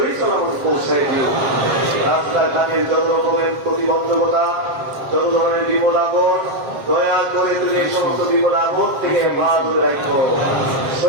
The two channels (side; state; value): left; late; 7.5 ms